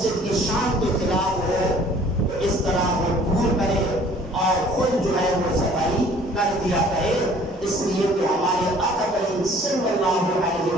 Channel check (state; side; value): normal; both; correlation 0.54